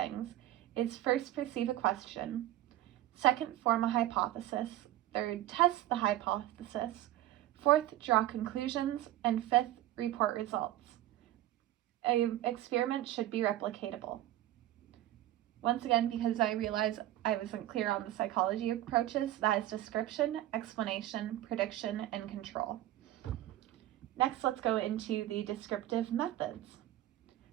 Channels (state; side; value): quieter; left; 14.2 dB